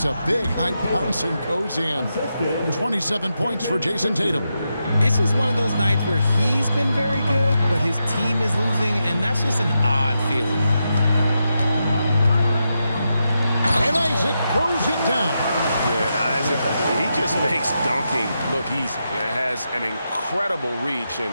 a big high bounce and goes in. 27 points for Jason Tatum. It's just one of those nights where he's been very good, but his team is losing, and that's just an odd feeling. And Isaac throws it down. Yeah, and Isaac, he just makes dunking look easy. It has an incredible reach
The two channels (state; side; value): inverted; both; correlation -0.86